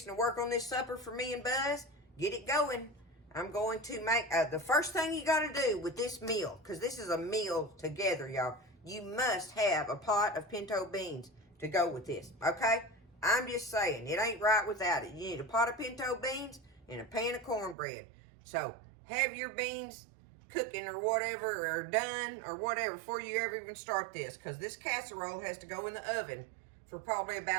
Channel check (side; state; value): left; drops out; at 17.8 s